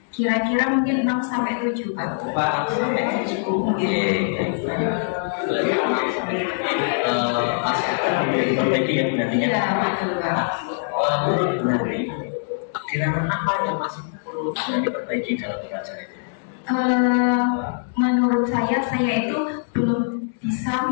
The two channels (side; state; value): right; silent; digital silence